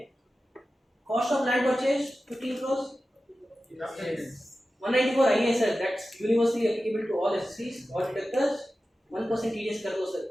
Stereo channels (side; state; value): both; normal; correlation 0.94